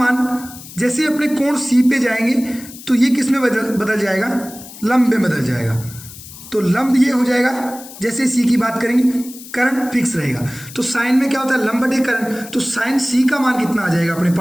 जैसे अपने कोण सी पे जाएंगे तो ये किस में बदल जाएगा लंब में बदल जाएगा। तो लंब ये हो जाएगा, जैसे सी की बात करेंगे कर्ण फिक्स रहेगा, तो साइन में क्या होता है लंब बटे कर्ण, तो साइन सी का मान कितना आ जाएगा अपने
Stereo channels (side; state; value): left; noise; hiss, 16 dB below the sound